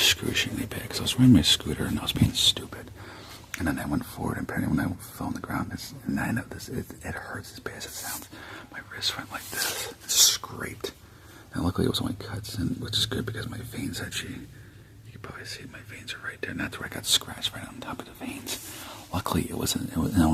bad. Because I was riding my scooter and I was being stupid, and then I went forward, and apparently when I fell on the ground, I know this. It hurts as bad as it sounds. My wrist went like this, scraped. And luckily it was only cuts, which is good because my veins actually, you can probably see my veins are right there, and that's where I got scratched right on top of the veins. Luckily it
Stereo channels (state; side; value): identical; both; correlation 1.00